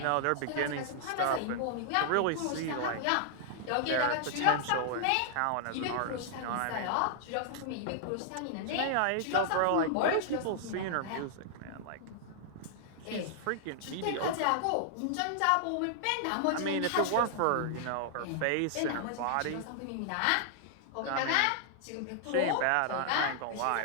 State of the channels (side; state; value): both; different; correlation -0.01